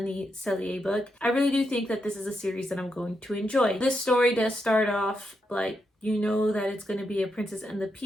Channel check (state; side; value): normal; both; correlation 0.83